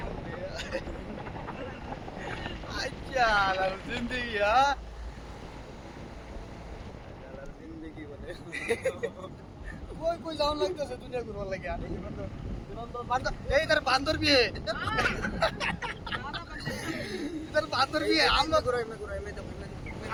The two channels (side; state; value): both; identical; correlation 1.00